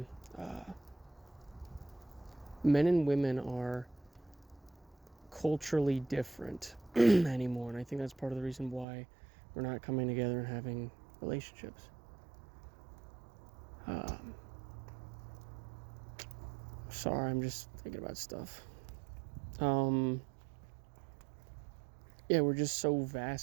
Uh, Men and women are culturally different anymore, and I think that's part of the reason why we're not coming together and having relationships. Um, Sorry, I'm just thinking about stuff. Um, yeah, we're just so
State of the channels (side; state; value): left; drops out; at 8.8 s